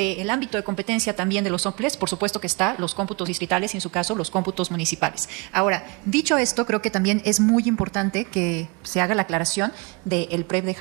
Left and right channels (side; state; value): left; quieter; 29.2 dB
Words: ámbito de competencia también de los OPLES, por supuesto que está los cómputos distritales y, en su caso, los cómputos municipales. Ahora, dicho esto, creo que también es muy importante que se haga la aclaración del PREP de